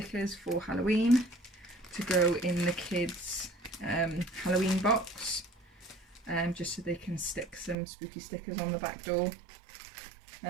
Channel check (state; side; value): drops out; left; at 7.8 s